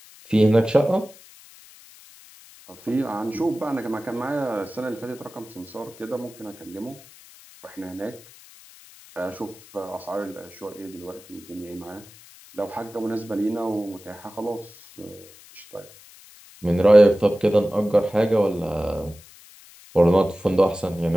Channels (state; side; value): noise; left; hiss, 22 dB below the sound